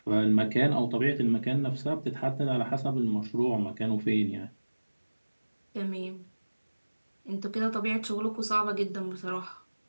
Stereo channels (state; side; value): inverted; both; correlation -1.00